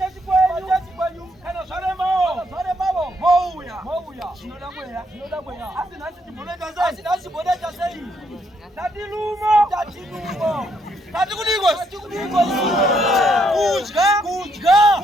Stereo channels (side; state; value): both; normal; correlation 0.73